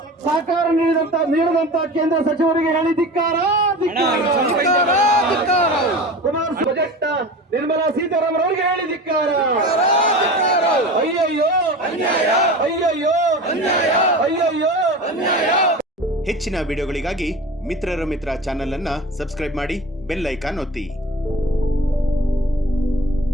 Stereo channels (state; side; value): normal; both; correlation 0.34